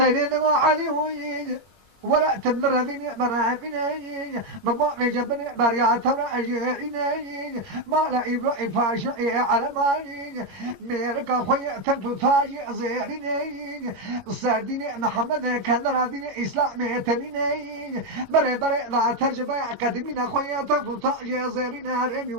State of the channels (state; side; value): late; left; 22 ms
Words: علي ويجي ولا تمر ذيني مرافيني مبوع جبني بريا تورا أجيريني ما لا يبرع فاشي على ماني ميرك خويا تنتو تاجي زيريني ساديني محمد كان راديني إسلامي تنيني بري بري لا ترجمة قديمين خويا تنتو تاجي زيريني